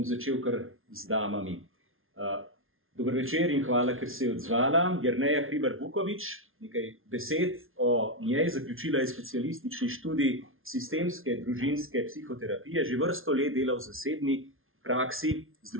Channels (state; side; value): late; left; 0.60 ms